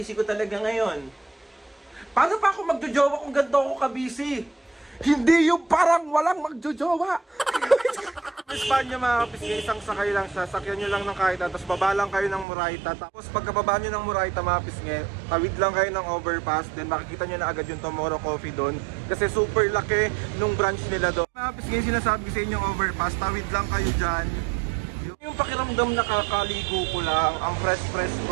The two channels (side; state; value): left; drops out; at 12.5 s